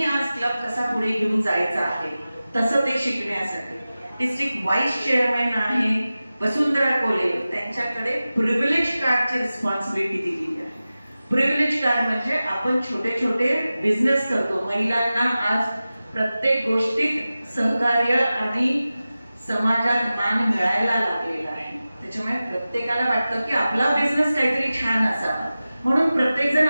आज क्लब कसा पुढे घेऊन जायचा आहे तसं ते शिकण्यासाठी. डिस्ट्रिक्ट व्हाईस चेअरमॅन आहे वसुंधरा कोले, त्यांच्याकडे प्रिव्हिलेज कार्डची रिस्पॉन्सिबिलिटी दिली आहे. प्रिव्हिलेज कार्ड म्हणजे आपण छोटे छोटे बिझनेस करतो, महिलांना आज प्रत्येक गोष्टीत सहकार्य आणि समाजात मान मिळायला लागलेला आहे. त्याच्यामुळे प्रत्येकाला वाटतं की आपला बिझनेस काहीतरी छान असावा, म्हणून प्रत्येक जण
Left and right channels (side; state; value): both; inverted; correlation -0.95